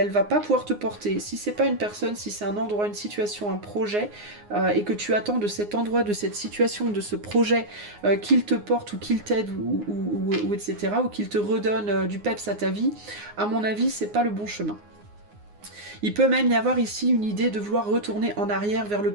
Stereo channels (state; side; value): late; left; 9.6 ms